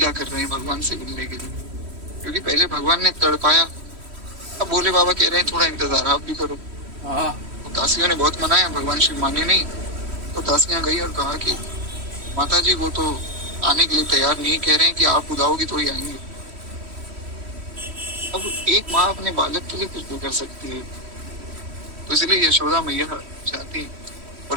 कर रहे हैं भगवान से मिलने के लिए, क्योंकि पहले भगवान ने तड़पाया। अब भोले बाबा कह रहे हैं थोड़ा इंतजार आप भी करो। तो दासियों ने बहुत मनाया, भगवान शिव माने नहीं। तो दासियां गई और कहा कि माता जी वो तो आने के लिए तैयार नहीं, कह रहे हैं कि आप बुलाओगी तो ही आएंगे। अब एक माँ अपने बालक के लिए कुछ भी कर सकती है, तो इसलिए यशोदा मैया जाती है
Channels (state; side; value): late; left; 3.1 ms